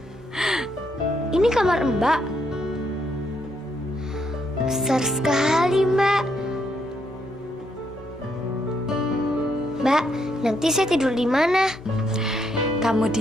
Ini kamar Mbak. Besar sekali, Mbak. Mbak, nanti saya tidur di mana? Kamu di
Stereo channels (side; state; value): both; normal; correlation 0.76